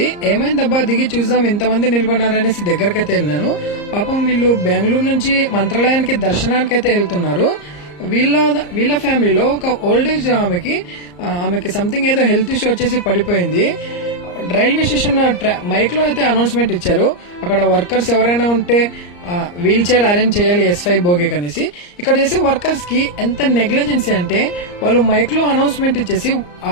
ఏమైందబ్బా దిగి చూద్దాం ఇంతమంది నిలబడినారనేసి దగ్గరకైతే వెళ్ళినాను. పాపం వీళ్ళు బెంగళూరు నుంచి మంత్రాలయానికి దర్శనానికి అయితే వెళ్తున్నారు. వీళ్ళ ఫ్యామిలీలో ఒక ఓల్డ్ ఏజ్ ఆమెకి సంథింగ్ ఏదో హెల్త్ ఇష్యూ వచ్చేసి పడిపోయింది. రైల్వే స్టేషన్ మైక్ లో అయితే అనౌన్స్మెంట్ ఇచ్చారు, అక్కడ వర్కర్స్ ఎవరైనా ఉంటే వీల్ చైర్ అరేంజ్ చేయాలి S5 బోగికి అనేసి. ఇక్కడ చేసే వర్కర్స్ కి ఎంత నెగ్లిజెన్సీ అంటే వాళ్ళు మైక్ లో అనౌన్స్మెంట్ ఇచ్చేసి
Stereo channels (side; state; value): right; late; 34 ms